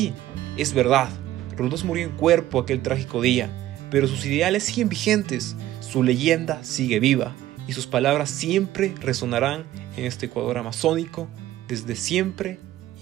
es verdad, Roldós murió en cuerpo aquel trágico día, pero sus ideales siguen vigentes, su leyenda sigue viva, y sus palabras siempre resonarán en este Ecuador amazónico, desde siempre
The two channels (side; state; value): left; quieter; 14.2 dB